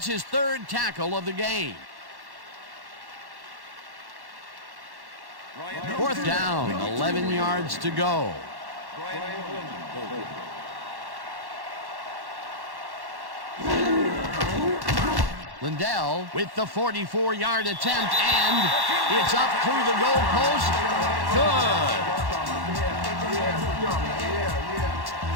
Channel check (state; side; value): late; left; 1.1 ms